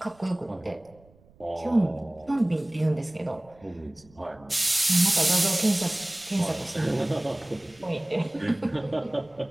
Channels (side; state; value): right; noise; rumble, 28 dB below the sound